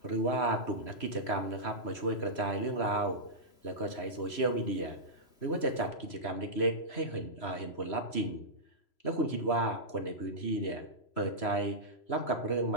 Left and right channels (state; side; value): late; right; 3.0 ms